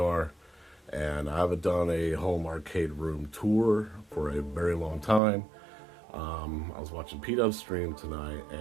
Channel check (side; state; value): left; drops out; at 5.2 s